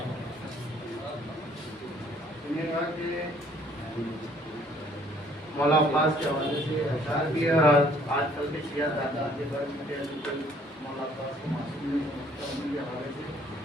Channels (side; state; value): both; normal; correlation 0.60